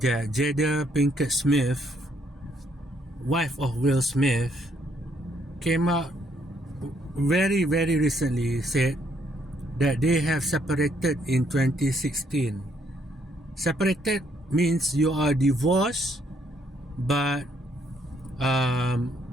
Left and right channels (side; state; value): both; normal; correlation 0.70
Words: that Jada Pinkett Smith, wife of Will Smith, came out very recently, said that they have separated in 2016. Separated means you are divorced, but